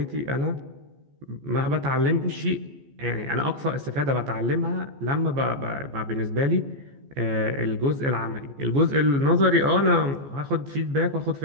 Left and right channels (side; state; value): left; late; 14 ms